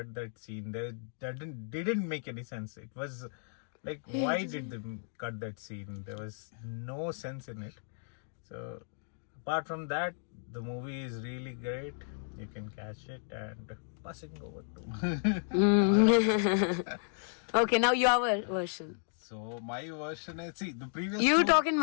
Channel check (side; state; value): right; silent; digital silence